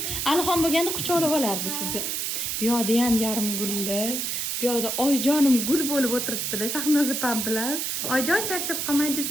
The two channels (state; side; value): noise; right; hiss, 1 dB below the sound